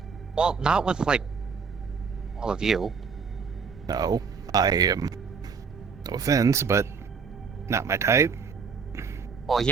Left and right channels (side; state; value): left; quieter; 5.6 dB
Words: well, not with like all of you. No, I am. No offense, but not my type. Well,